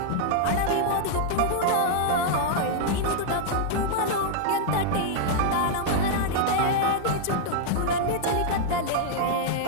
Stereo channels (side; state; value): both; different; correlation -0.01